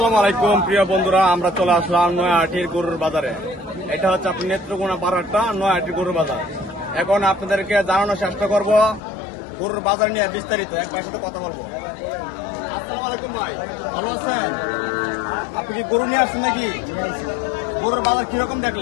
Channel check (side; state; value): right; drops out; at 9.0 s